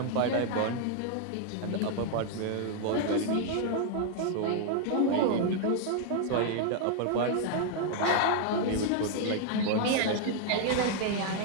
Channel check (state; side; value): different; both; correlation 0.00